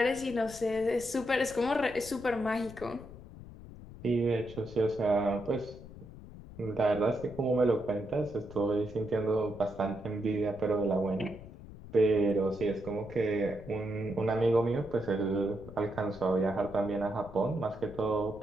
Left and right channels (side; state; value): left; noise; rumble, 16 dB below the sound